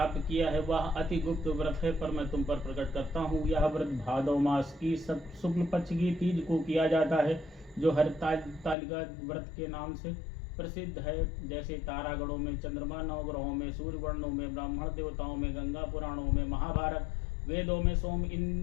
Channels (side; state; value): right; drops out; at 8.8 s